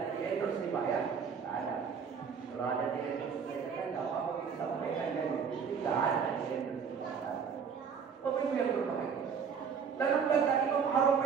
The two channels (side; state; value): left; quieter; 6.5 dB